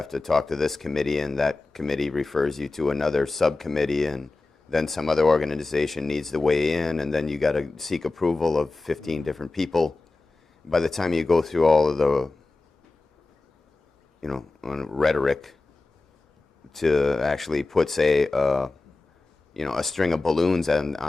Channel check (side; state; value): right; quieter; 3.4 dB